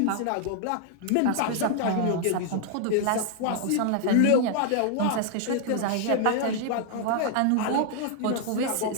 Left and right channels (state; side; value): different; both; correlation 0.00